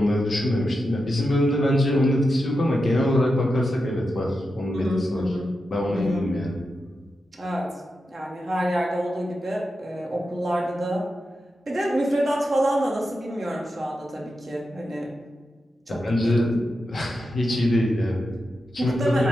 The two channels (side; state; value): both; normal; correlation 0.89